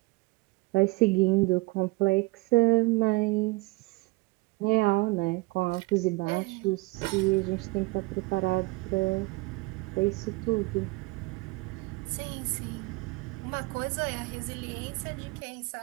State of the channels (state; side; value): quieter; left; 23.5 dB